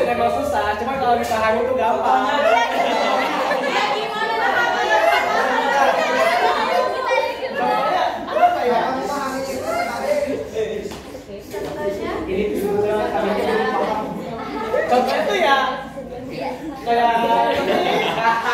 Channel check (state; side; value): identical; both; correlation 1.00